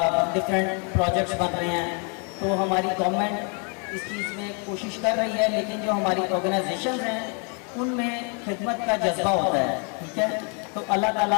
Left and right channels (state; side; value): quieter; right; 37.4 dB